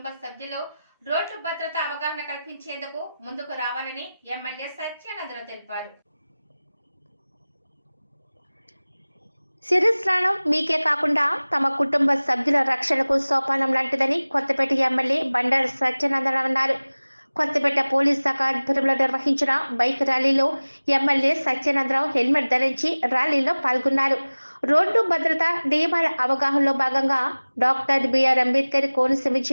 సభ్యులు రోడ్డు భద్రత అవగాహన కల్పించేందుకు ముందుకు రావాలని ఎమ్మెల్యే సత్యానందరావు తెలిపారు. శిరస్నానం మీకే కాకుండా తమ కుటుంబ సభ్యుల రక్షణకు సోపానం లాంటిదని కొత్తపేట ఎమ్మెల్యే బండారు సత్యానందరావు అన్నారు. కొత్తపేట పోలీస్ శాఖ ఆధ్వర్యంలో నిర్వహించిన బైక్ ర్యాలీలో ఎమ్మెల్యే సత్యానందరావు హెల్మెట్ ధరించి ర్యాలీలో పాల్గొన్నారు. రోడ్డు భద్రత నియమాల అవగాహనలో భాగంగా డాక్టర్ బిఆర్ అంబేద్కర్ కోనసీమ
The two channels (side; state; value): both; inverted; correlation -0.99